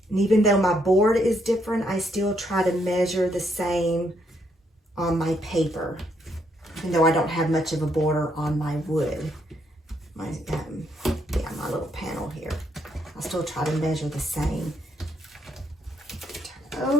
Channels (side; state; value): both; normal; correlation 0.74